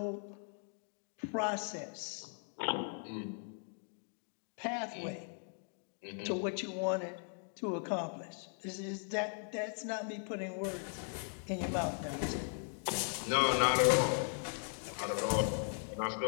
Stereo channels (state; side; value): silent; right; 52 dB below the other